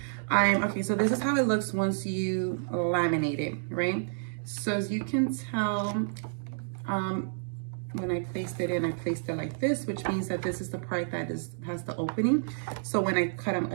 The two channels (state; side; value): silent; left; digital silence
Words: Okay, so this is how it looks once you laminate it, right? So as you can tell, when I placed it in, I placed it like this, which means that this is the part that has the opening. So when I cut them,